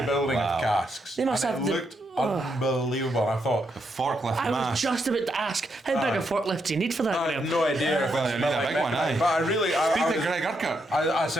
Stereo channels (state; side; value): normal; both; correlation 0.80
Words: building of casks. They must and have it looked unbelievable. I thought The forklift I mass. was just about to ask, how big a forklift do you need for that, I Graeme? had no idea. Well, you need a big one, aye. But I really, Speak I to was- Greg Urquhart. I